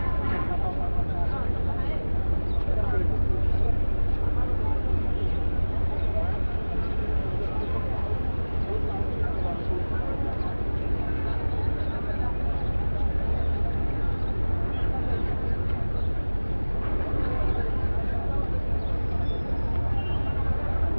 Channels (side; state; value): both; inverted; correlation -1.00